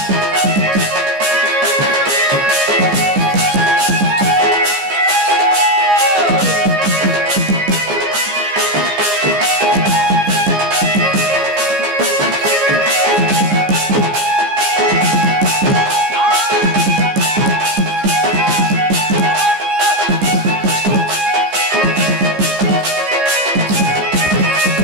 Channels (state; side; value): late; left; 14 ms